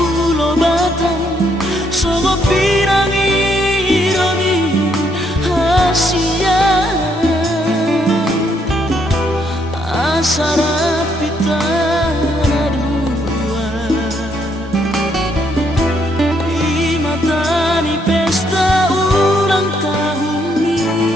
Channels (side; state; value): both; normal; correlation 0.72